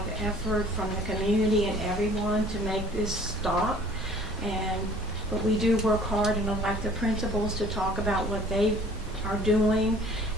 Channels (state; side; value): normal; both; correlation 0.52